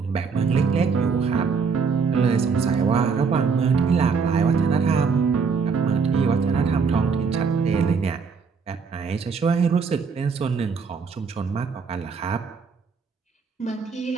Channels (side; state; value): left; quieter; 5.4 dB